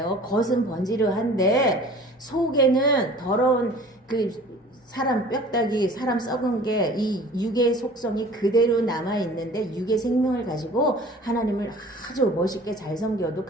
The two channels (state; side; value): normal; both; correlation 0.46